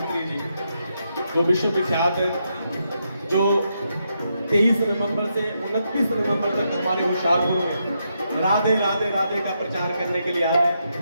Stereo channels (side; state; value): both; inverted; correlation -0.81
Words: जी जो विश्व विख्यात है जो 23 नवंबर से 29 नवंबर तक हमारे होशियारपुर में राधे राधे राधे का प्रचार करने के लिए आए